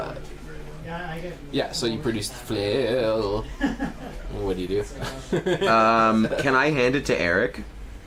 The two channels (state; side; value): identical; both; correlation 1.00